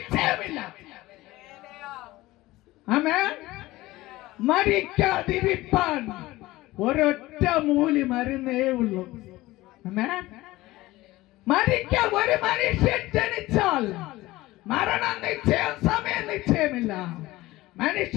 ആമേൻ. മരിക്കാതിരിപ്പാൻ ഒരൊറ്റ മൂലി മരുന്നേ ഉള്ളൂ. ആമേൻ. മരിക്കാൻ ഒരു മനുഷ്യൻ ജനിച്ചാൽ മരണം നിശ്ചയം, സമയം നിശ്ചയമില്ല.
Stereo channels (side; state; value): right; quieter; 18.4 dB